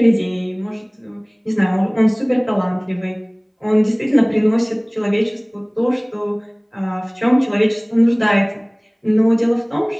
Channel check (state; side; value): identical; both; correlation 1.00